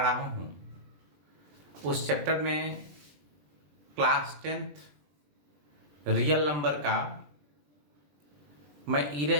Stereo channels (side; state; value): left; late; 21 ms